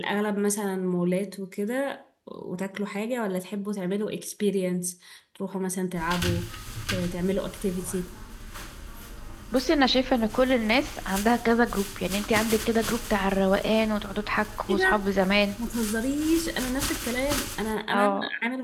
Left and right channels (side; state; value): both; identical; correlation 1.00